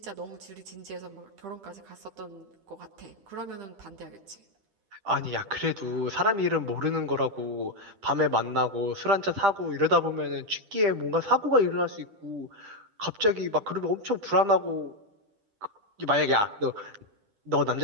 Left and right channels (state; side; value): late; left; 10 ms